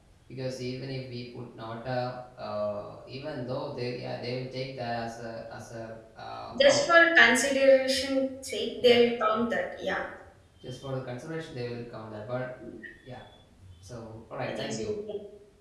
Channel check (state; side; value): identical; both; correlation 1.00